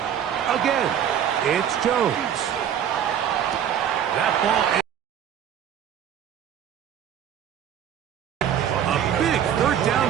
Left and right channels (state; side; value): quieter; left; 9.4 dB